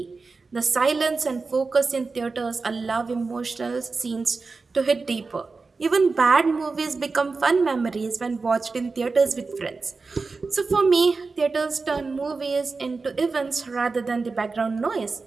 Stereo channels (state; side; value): quieter; left; 4.2 dB